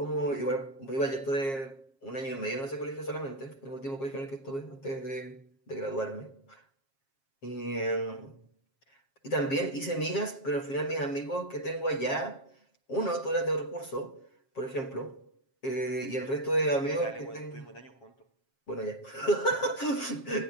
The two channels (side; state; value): right; late; 7.4 ms